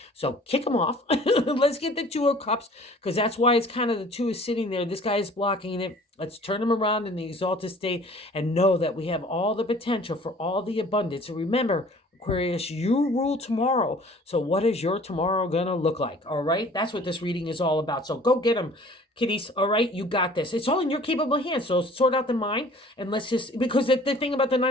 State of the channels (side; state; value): both; normal; correlation 0.50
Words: So kick him off. Let's get the Two of Cups, because that's why it's kind of the two is sitting there. This guy is blocking it. Let's turn him around in the exalted state and know that we have all the potential for all the abundance. So remember, Aquarius, you rule tomorrow. So what is your tomorrow going to look like? All right. That's what this reading is all about. So go get them, kiddies. All right. You got this. It's all in your capable hands. So sort out the mind, and let's just, because the thing about the